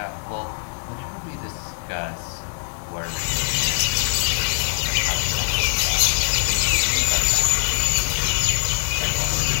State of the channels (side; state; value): right; silent; digital silence